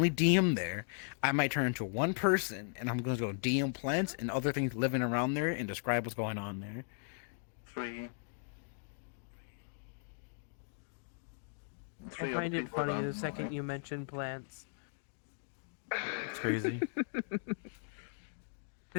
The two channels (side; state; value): right; silent; digital silence